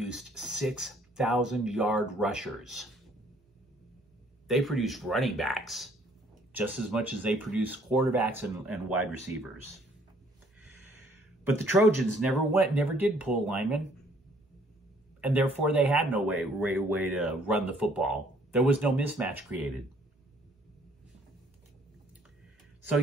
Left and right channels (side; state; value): both; normal; correlation 0.62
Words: 6,000-yard rushers. They produced running backs just as much as they produced quarterbacks and wide receivers. But the Trojans never did pull linemen, and therefore they had no way to run the football. There was no mismatch created. So